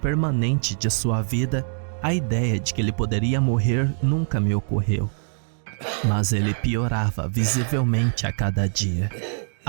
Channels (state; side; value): silent; left; digital silence